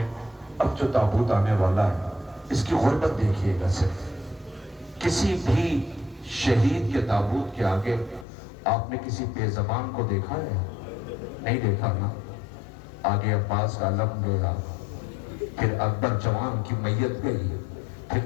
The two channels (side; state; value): right; drops out; at 8.2 s